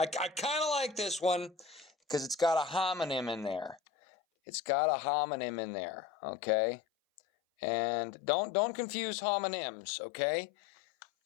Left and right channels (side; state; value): right; drops out; at 3.8 s